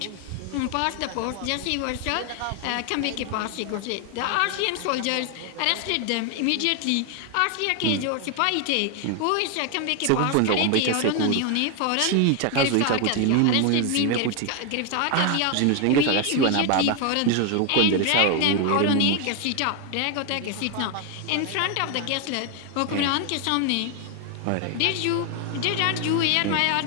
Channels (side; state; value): both; different; correlation 0.01